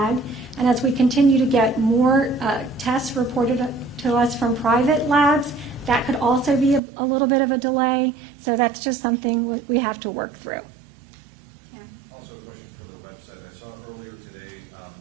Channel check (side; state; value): left; drops out; at 6.8 s